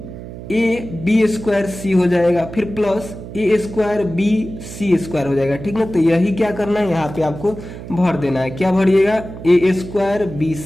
B square C हो जाएगा, फिर plus a square B C square हो जाएगा, ठीक ना। तो यही क्या करना है, यहाँ पे आपको भर देना है। क्या भरिएगा, a square B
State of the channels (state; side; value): noise; right; hum, 12 dB below the sound